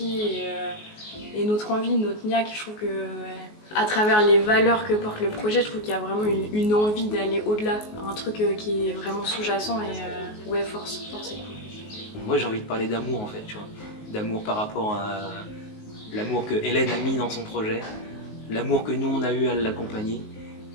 et notre envie, notre niaque. Je trouve que à travers les valeurs que porte le projet, je trouve qu'il y a vraiment une envie d'aller au-delà, un truc qui est vraiment sous-jacent et ouais, force c'est cool. Moi j'ai envie de parler d'amour en fait, tu vois. D'amour par rapport à l'amour que Hélène a mis dans son projet, l'amour que nous on a eu à l'accompagner,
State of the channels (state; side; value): late; right; 19 ms